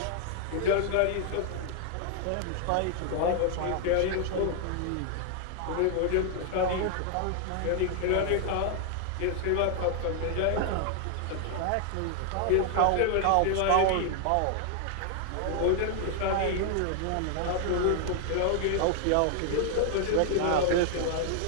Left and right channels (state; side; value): different; both; correlation 0.00